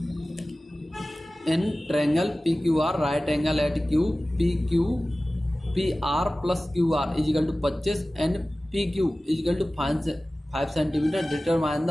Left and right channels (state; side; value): normal; both; correlation 0.97